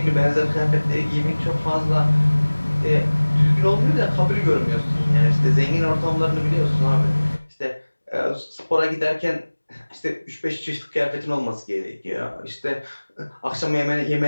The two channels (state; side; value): inverted; both; correlation -1.00